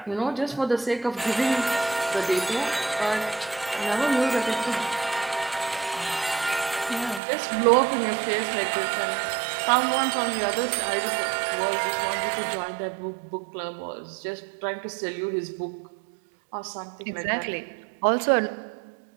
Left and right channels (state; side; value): drops out; left; at 7.2 s